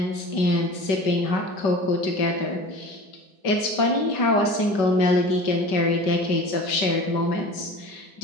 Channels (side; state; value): right; late; 5.2 ms